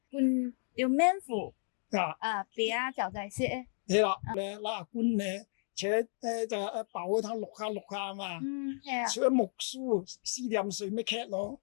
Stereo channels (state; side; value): silent; right; digital silence